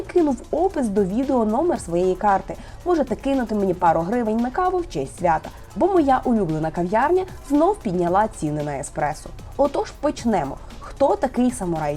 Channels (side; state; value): both; identical; correlation 1.00